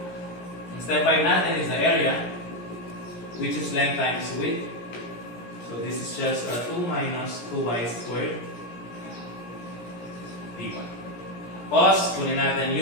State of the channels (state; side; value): late; right; 17 ms